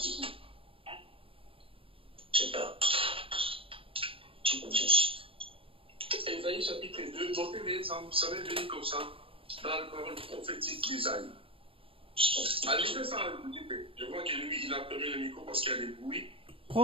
Je sais pas. Ésaïe chapitre 2, notez-les, ça va venir comme ça dans la parole prophétique d'Ésaïe. Allez, fais ça, je vois que lui, il a fermé le micro parce qu'il y a des bruits.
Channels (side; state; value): left; late; 0.26 ms